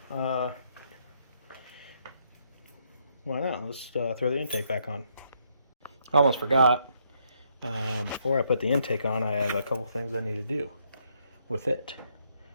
why not? Let's throw the intake back on. I almost forgot. Before I put the intake on, I have a couple things I need to do with it.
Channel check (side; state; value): both; inverted; correlation -0.73